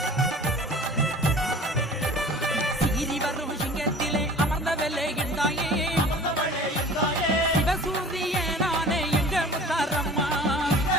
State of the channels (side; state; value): both; normal; correlation 0.44